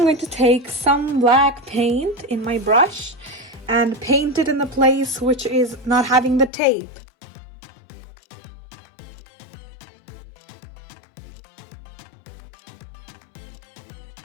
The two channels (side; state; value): right; drops out; at 6.5 s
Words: to take some black paint in my brush and paint it in the place which is not having the tape.